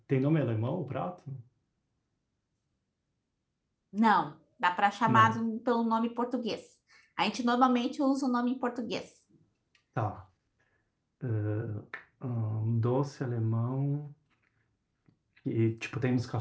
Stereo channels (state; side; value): identical; both; correlation 1.00